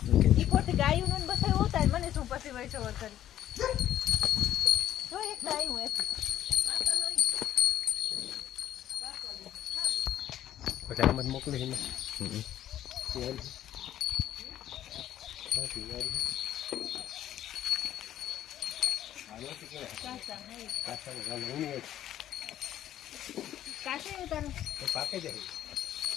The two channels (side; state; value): right; quieter; 11.9 dB